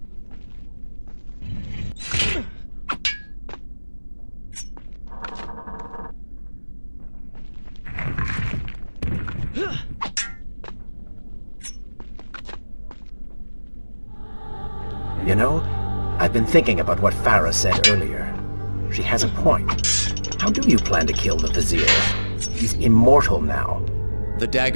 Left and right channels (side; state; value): both; inverted; correlation -1.00